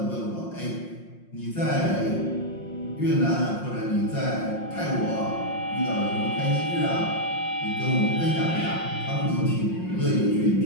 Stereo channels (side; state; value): right; late; 5.6 ms